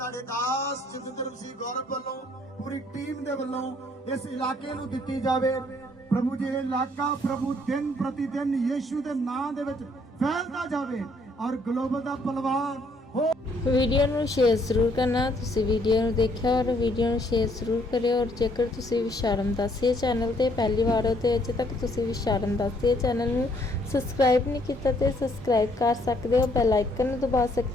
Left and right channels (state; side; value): normal; both; correlation 0.67